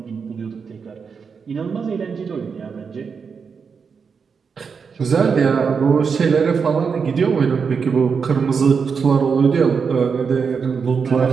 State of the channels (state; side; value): quieter; left; 5.8 dB